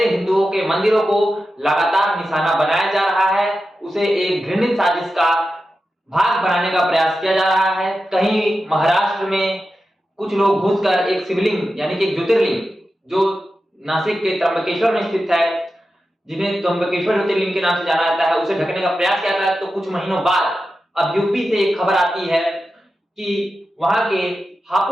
हिंदुओं के मंदिरों को लगातार निशाना बनाया जा रहा है, उसे एक घृणित साजिश का भाग बनाने का प्रयास किया जा रहा है। कहीं महाराष्ट्र में कुछ लोग घुसकर एक शिवलिंग यानी कि एक ज्योतिर्लिंग जो नासिक के त्र्यंबकेश्वर में स्थित है, जिन्हें त्र्यंबकेश्वर ज्योतिर्लिंग के नाम से जाना जाता है, उसे ढकने का प्रयास किया था। तो कुछ महीनों बाद अब यूपी से एक खबर आती है कि वहां के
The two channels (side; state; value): both; normal; correlation 0.91